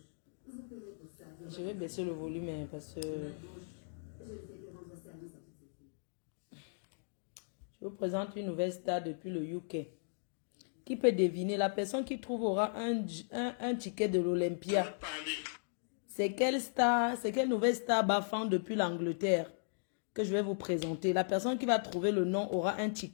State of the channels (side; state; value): right; silent; digital silence